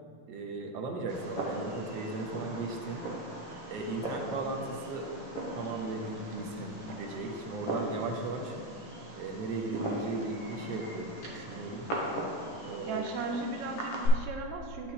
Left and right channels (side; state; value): right; late; 17 ms